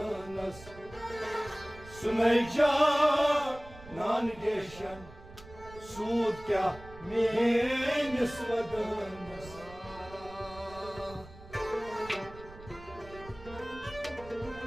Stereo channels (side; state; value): right; noise; rumble, 18 dB below the sound